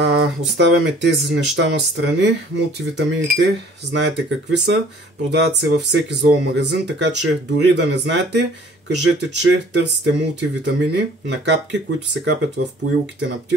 Оставяме тези неща на страни. Мултивитамините, знаете какви са, продават се във всеки зоомагазин, така че дори да не знаете, кажете, че търсите мултивитамини на капки, които се капят в поилките на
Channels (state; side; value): normal; both; correlation 0.53